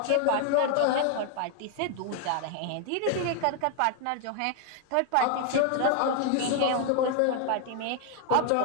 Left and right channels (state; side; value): different; both; correlation 0.00